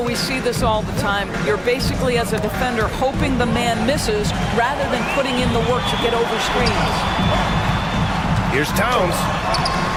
see this all the time. You're basically, as a defender, hoping the man misses rather than putting in the work to get over screens. Here's Towns.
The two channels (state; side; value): identical; both; correlation 1.00